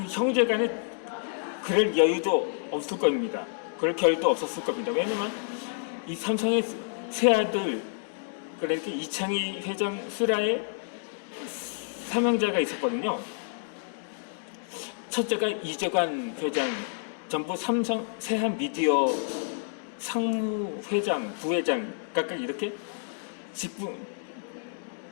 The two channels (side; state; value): right; silent; digital silence